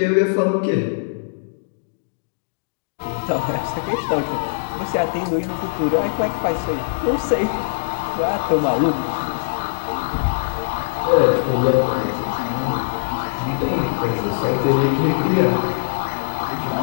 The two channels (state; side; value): silent; right; digital silence